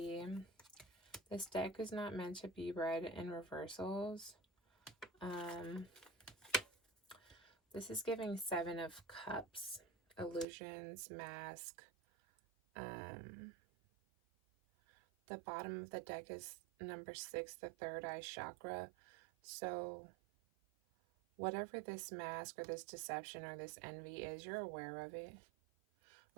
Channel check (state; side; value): drops out; left; at 10.5 s